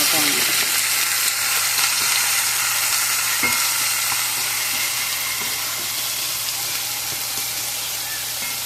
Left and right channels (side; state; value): both; identical; correlation 1.00